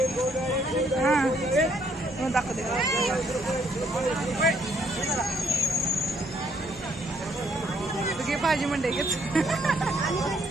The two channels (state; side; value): normal; both; correlation 0.68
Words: हां दाखवते. भाजी मंडई घेत.